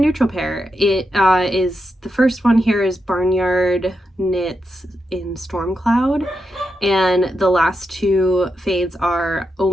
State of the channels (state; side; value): normal; both; correlation 0.86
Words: pair. It is, the first one here is Barnyard Knits in Storm Cloud, and the last 2 fades are